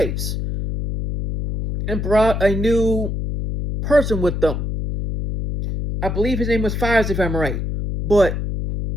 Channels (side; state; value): left; noise; hum, 3 dB below the sound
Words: and brought a new person with them. I believe his name was Fives, if I'm right. But